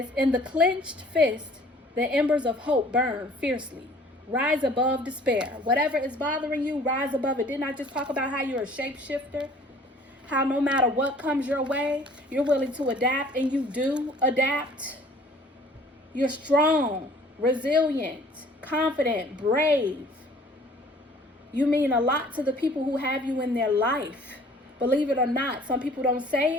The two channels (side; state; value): both; normal; correlation 0.53